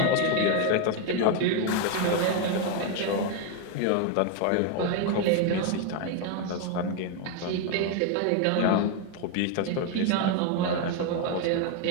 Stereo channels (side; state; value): both; different; correlation 0.01